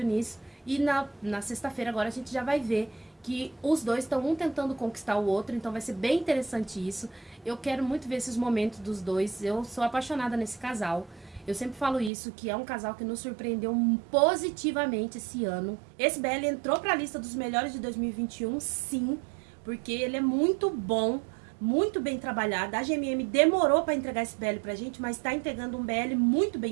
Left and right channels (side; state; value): left; drops out; at 12.1 s